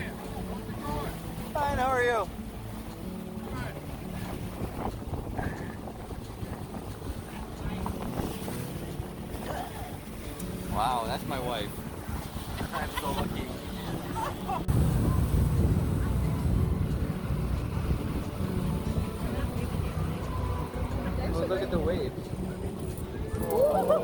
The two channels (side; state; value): both; identical; correlation 1.00